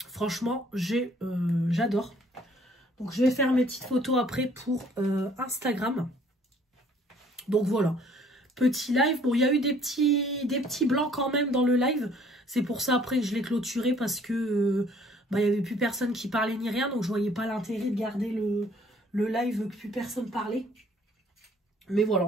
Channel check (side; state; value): both; normal; correlation 0.59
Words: Franchement, j'adore. Donc je vais faire mes petites photos après pour Instagram. Donc voilà, petit live. Bon, il y a eu des petits blancs quand même dans le live. C'est pour ça après que je l'ai clôturé parce que il n'y avait plus personne qui parlait ni rien. Donc je voyais pas l'intérêt de garder le live que plus personne parlait. Mais voilà,